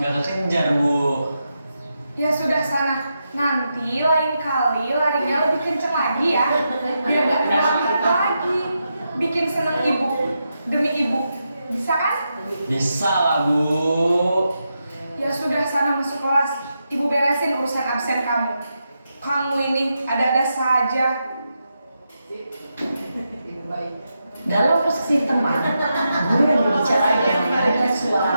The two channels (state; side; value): inverted; both; correlation -0.86